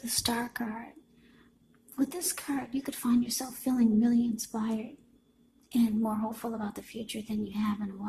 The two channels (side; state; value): both; identical; correlation 1.00